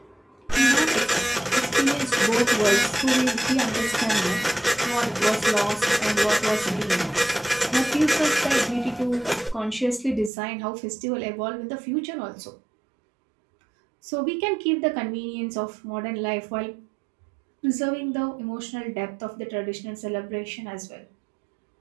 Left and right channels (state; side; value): drops out; left; at 10.3 s